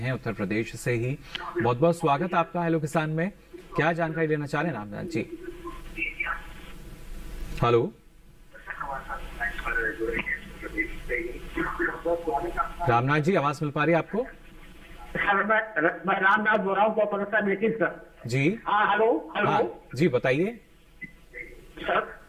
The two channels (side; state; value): both; identical; correlation 1.00